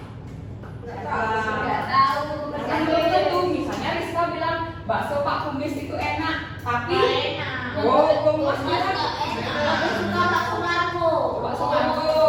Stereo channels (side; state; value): both; identical; correlation 1.00